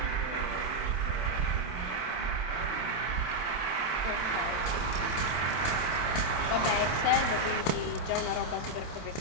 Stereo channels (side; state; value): right; late; 27 ms